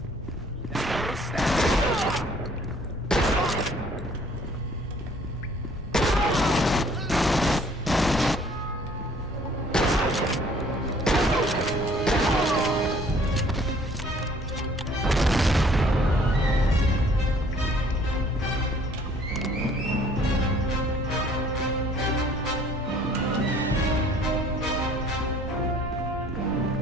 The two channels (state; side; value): normal; both; correlation 0.57